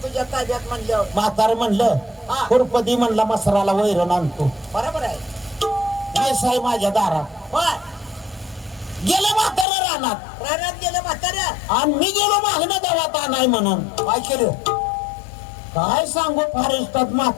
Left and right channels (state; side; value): drops out; right; at 9.7 s